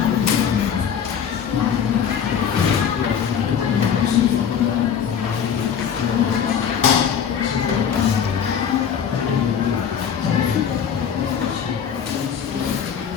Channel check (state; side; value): quieter; right; 7.9 dB